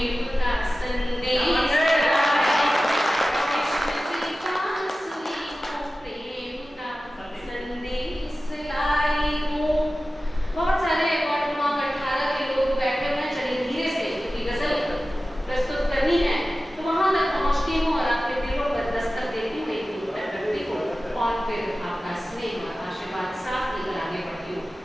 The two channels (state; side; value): normal; both; correlation 0.95